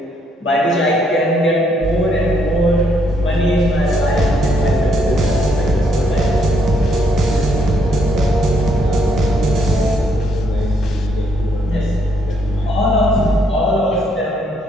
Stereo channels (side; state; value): both; normal; correlation 0.72